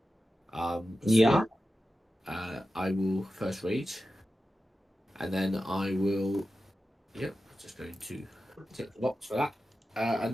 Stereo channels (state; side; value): normal; both; correlation 0.93